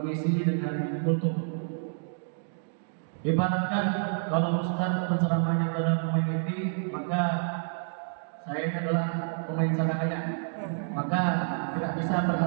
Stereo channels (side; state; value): left; silent; digital silence